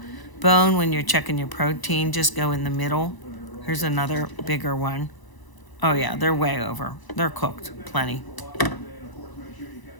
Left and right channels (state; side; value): late; right; 1.0 ms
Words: bone when you're checking your protein, just go in the middle. Here's another bigger one. Oh yeah, they're way over. They're cooked, plenty.